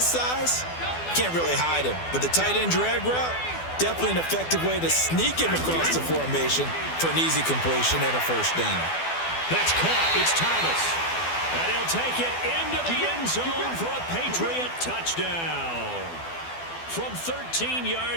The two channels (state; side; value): late; right; 12 ms